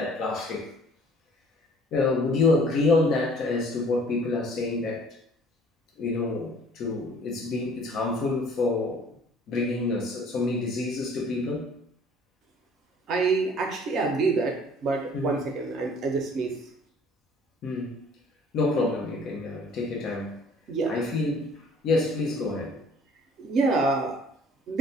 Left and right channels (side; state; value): both; normal; correlation 0.54